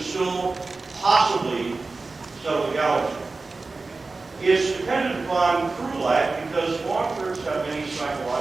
possibly settle the galaxy. It's dependent upon crew life because long terms have many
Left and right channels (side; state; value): left; quieter; 3.7 dB